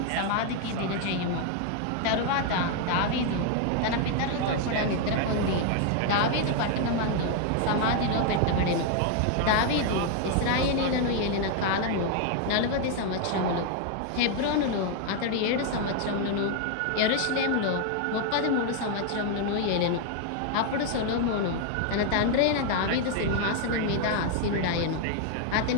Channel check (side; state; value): both; different; correlation 0.00